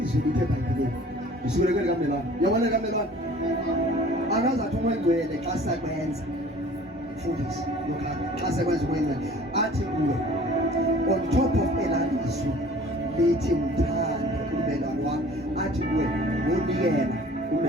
lithe bhayibhelini usukeleke likamelwane yabona likamelwane akazathi umongcwele xa sakwenza mfundisi lokhana xa sakwenza umongcwele athi kuwe on top of elalizwi lithi mthande umelwane wakho athi kuwe wonikela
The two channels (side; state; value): both; normal; correlation 0.49